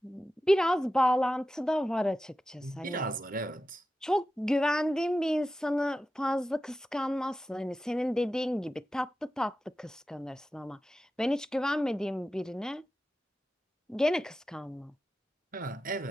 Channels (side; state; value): both; normal; correlation 0.92